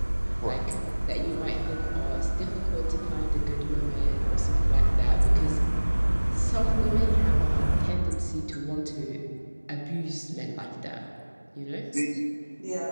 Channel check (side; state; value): both; inverted; correlation -1.00